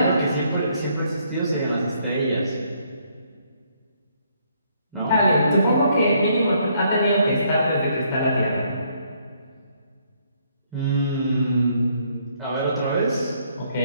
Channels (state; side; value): inverted; both; correlation -0.69